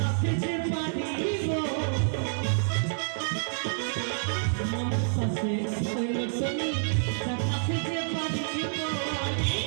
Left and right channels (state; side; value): silent; left; 59 dB below the other